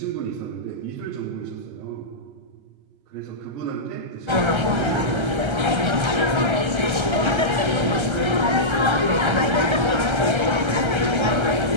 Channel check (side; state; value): left; late; 1.3 ms